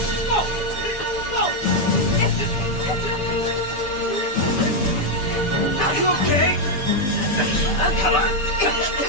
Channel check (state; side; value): late; right; 6.8 ms